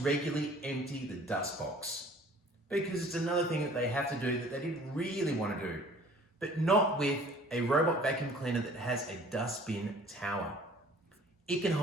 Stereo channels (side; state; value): both; normal; correlation 0.51